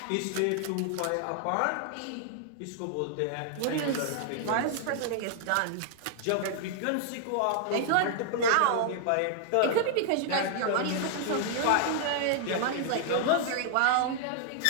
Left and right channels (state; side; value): different; both; correlation -0.01